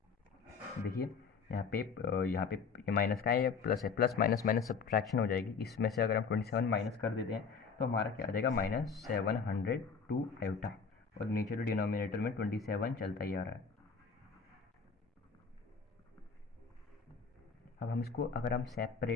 देखिए यहाँ पे ये माइनस का है, ये प्लस है, प्लस माइनस माइनस सब्ट्रैक्शन हो जाएगी, इसमें से अगर हम 27 माइनस कर देते हैं तो हमारा क्या आ जाएगा -702 आयोटा, और नीचे तो डिनोमिनेटर में 27 चलता ही आ रहा है। अब हम इसको अगर हम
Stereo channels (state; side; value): quieter; right; 5.5 dB